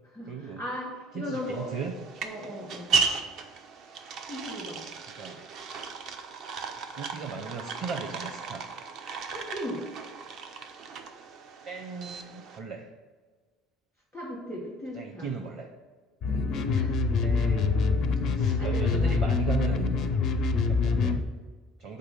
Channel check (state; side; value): normal; both; correlation 0.53